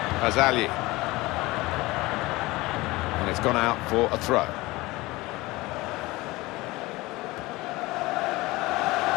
Azali. And it's gone out for a throw.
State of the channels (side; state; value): right; quieter; 20.7 dB